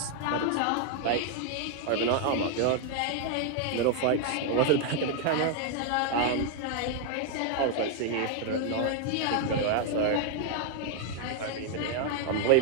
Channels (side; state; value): both; different; correlation 0.00